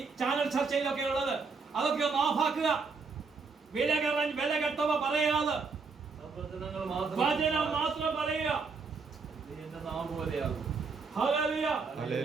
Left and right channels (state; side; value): quieter; left; 4.7 dB